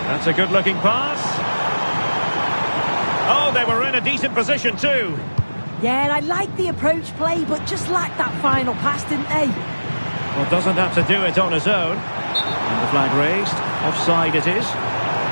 That's a good-looking pass. Oh, they were in a decent position too. Yeah, I like the approach play, but just lacked that final pass, didn't they? Well, doesn't have to do it on his own. And the flag raised. Offside it is.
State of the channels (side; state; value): both; inverted; correlation -1.00